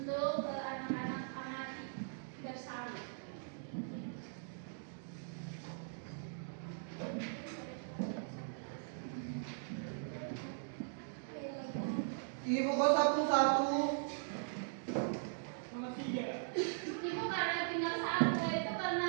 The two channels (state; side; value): silent; left; digital silence